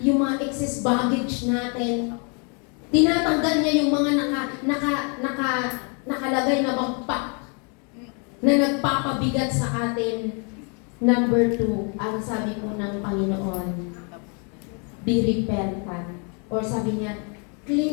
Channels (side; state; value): right; quieter; 36.8 dB